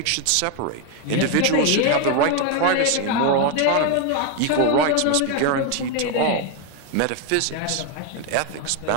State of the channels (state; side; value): different; both; correlation 0.01